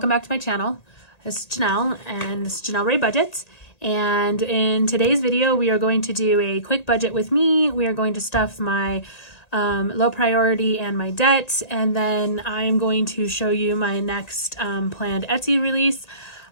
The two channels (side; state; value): right; late; 1.8 ms